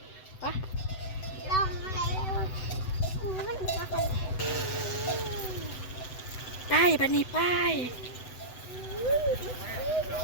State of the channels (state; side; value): late; right; 7.9 ms